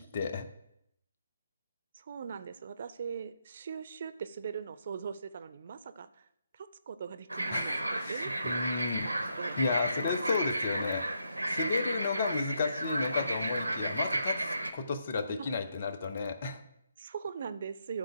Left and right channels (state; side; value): inverted; both; correlation -0.78